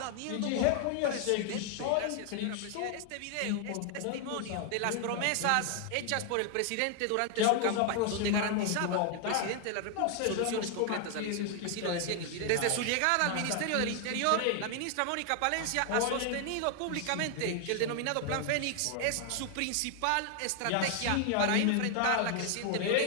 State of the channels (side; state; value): both; different; correlation 0.00